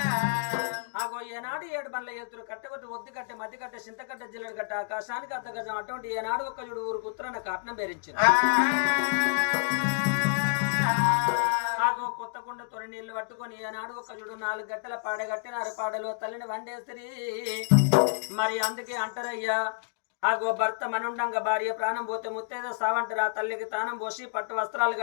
ఆగో ఏనాడు 7 బండ్ల ఎత్తురు కట్టెబట్టి ఒద్ది కట్టె మధ్య కట్టె చింతకట్టె జిల్లెడు కట్ట ఆకాశానికి అర్ధగజం అటువంటి ఏనాడు ఒక యుడు ఊరికి ఉత్తరాన కాటనం బేరించారు ఆగో కొత్త కుండ తొలి నీళ్లు పట్టుకొని ఏనాడు ఒక యుడు 4 గంటల పాడగట్టినారు పాడలో తల్లిని వండేసిరి మరి అందుకే అంటారయ్యా ఆగో భర్త మనుండంగా భార్య ప్రాణం పోతే ముత్తేదో సావంటారు ఆ తల్లికి తానం పోసి పట్టు వస్త్రాలు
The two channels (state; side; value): silent; right; digital silence